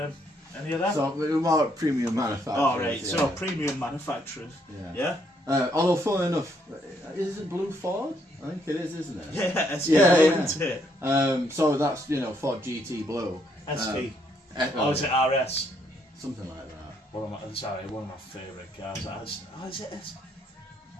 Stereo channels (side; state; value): both; normal; correlation 0.72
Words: Any of that? So we're more premium manufacturers. Oh, right. Yeah. So premium manufacturers. Yeah. Although, funnily enough, is it Blue Ford? I think it is, isn't it? Yeah, SP isn't it? So that's Ford GT Blue. SP. Is it RS? Something like that. One of my favourite cars. Is it SP?